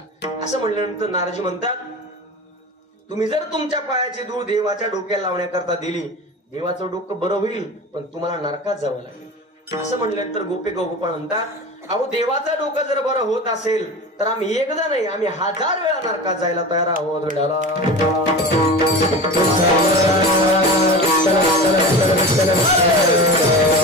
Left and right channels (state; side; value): normal; both; correlation 0.31